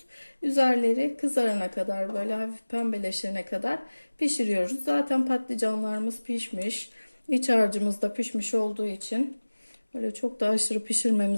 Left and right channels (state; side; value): inverted; both; correlation -1.00